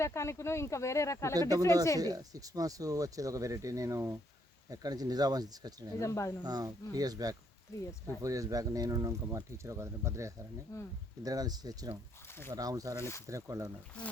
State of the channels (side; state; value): both; normal; correlation 0.72